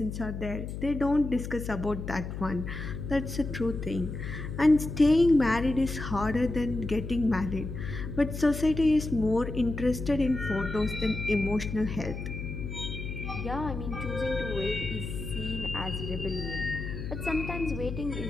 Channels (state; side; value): noise; left; hum, 6 dB below the sound